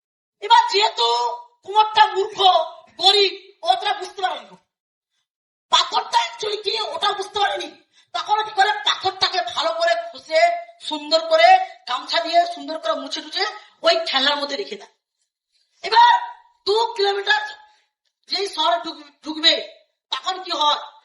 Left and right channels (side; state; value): both; identical; correlation 1.00